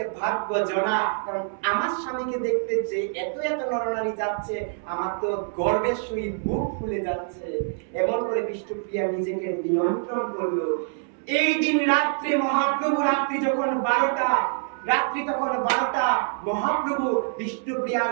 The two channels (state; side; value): silent; left; 61 dB below the other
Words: ভাগ্যজনা। কারণ আমার স্বামীকে দেখতে যে এত এত নরনারী যাচ্ছে, আমার তো গর্বের সহিত বুক ফুলে যাচ্ছে। এমন করে বিষ্ণুপ্রিয়া নিজেকে নিয়ন্ত্রণ করলো। এই দিন রাত্রে মহাপ্রভু, রাত্রি যখন 12টা, রাত্রি তখন 12টা, মহাপ্রভু বিষ্ণুপ্রিয়ার